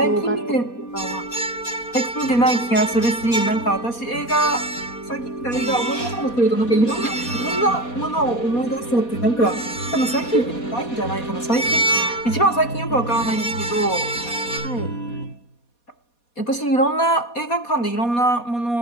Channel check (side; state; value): right; late; 4.2 ms